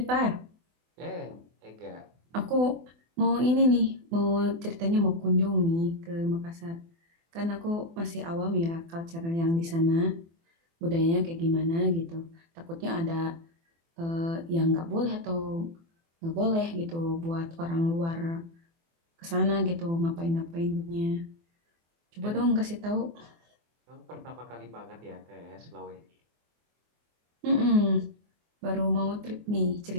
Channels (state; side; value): late; left; 24 ms